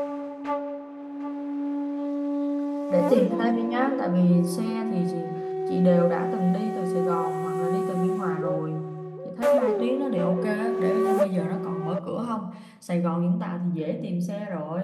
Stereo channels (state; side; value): identical; both; correlation 1.00